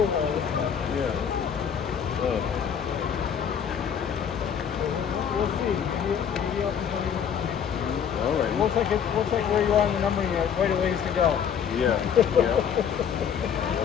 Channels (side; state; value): right; quieter; 7.9 dB